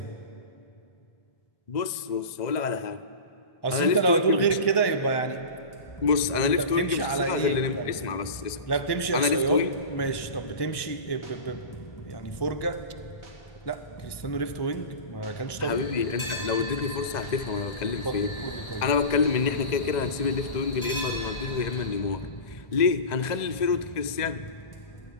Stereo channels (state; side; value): late; right; 1.1 ms